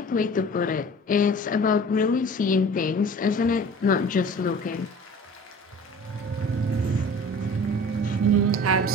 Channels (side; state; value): both; normal; correlation 0.43